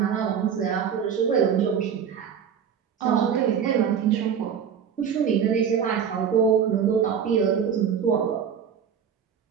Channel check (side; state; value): left; quieter; 7.6 dB